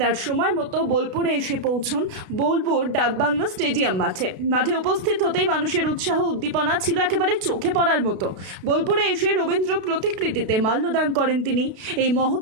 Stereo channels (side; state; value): left; late; 32 ms